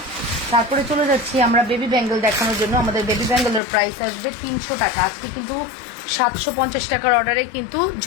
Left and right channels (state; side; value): drops out; right; at 3.6 s